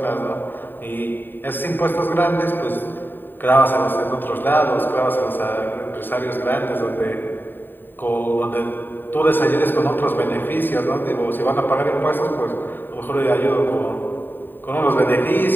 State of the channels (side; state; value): right; late; 0.093 ms